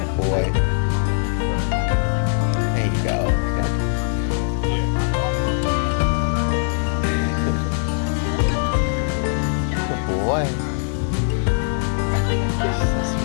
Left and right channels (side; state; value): right; silent; 64 dB below the other